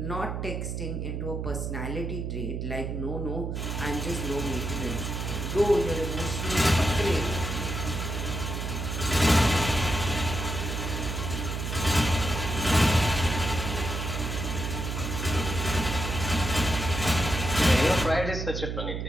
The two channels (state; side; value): noise; right; hum, 3 dB below the sound